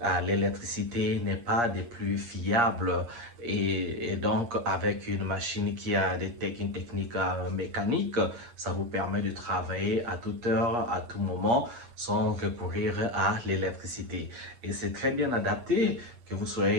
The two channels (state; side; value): late; left; 8.5 ms